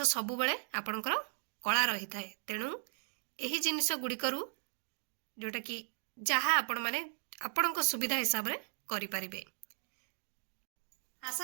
सबु बेले आपणकर कला रही थाए। तेणु एही जिनिस गुड़िकरू जोटा कि जहा आपण माने आपणक सुविधा हिसाब रे करि परिबे।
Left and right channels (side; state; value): left; silent; 53 dB below the other